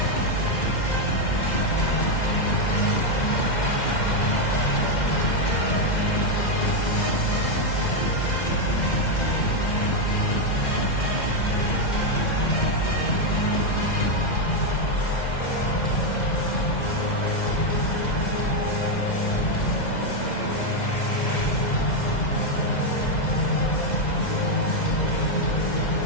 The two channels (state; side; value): late; right; 2.0 ms